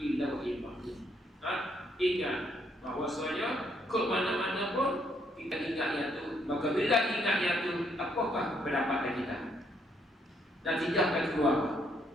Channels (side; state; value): both; normal; correlation 0.71